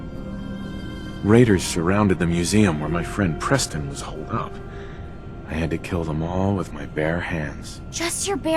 Raiders surrounded the museum where my friend Preston was holed up. I had to kill them all with my bare hands. Just your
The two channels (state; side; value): identical; both; correlation 1.00